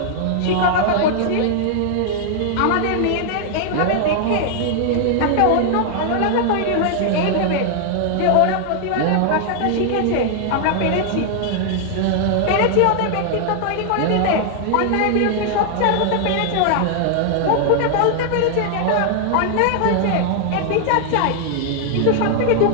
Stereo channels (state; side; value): different; both; correlation 0.00